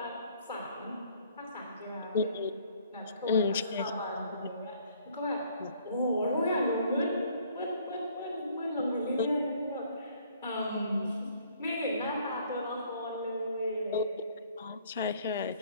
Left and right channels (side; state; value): both; inverted; correlation -0.61